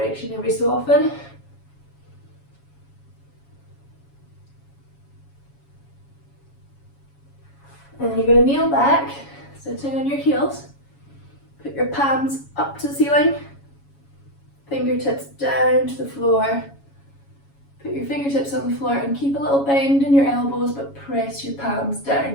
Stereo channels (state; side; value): late; right; 7.2 ms